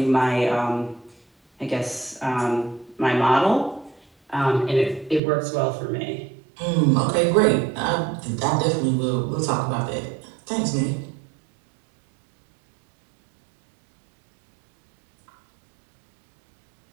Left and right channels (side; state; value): left; drops out; at 5.2 s